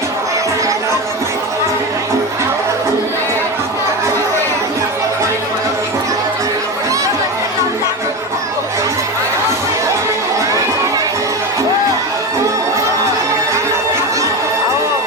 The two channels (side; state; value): both; normal; correlation 0.21